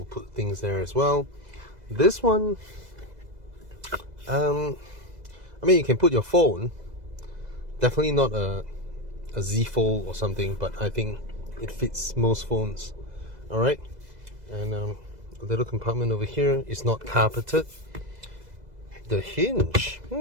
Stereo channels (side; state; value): left; late; 2.0 ms